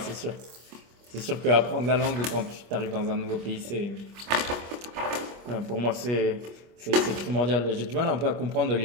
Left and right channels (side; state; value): left; late; 25 ms